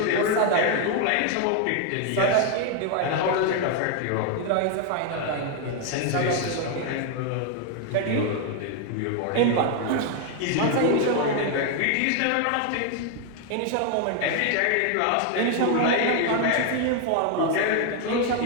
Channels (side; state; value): both; different; correlation 0.00